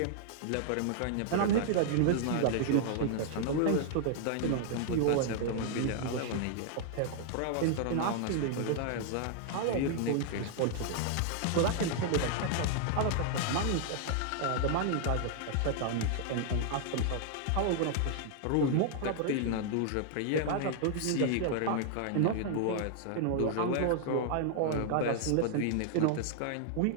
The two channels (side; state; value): both; different; correlation -0.01